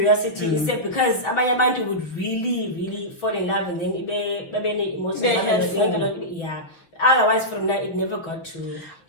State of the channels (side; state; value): right; late; 6.4 ms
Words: You said, because abantu would really, really fall in love, and then yeah. Otherwise, from that, it never got to